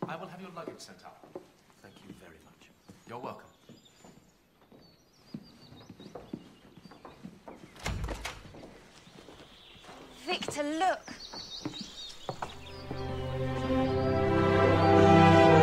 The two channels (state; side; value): identical; both; correlation 1.00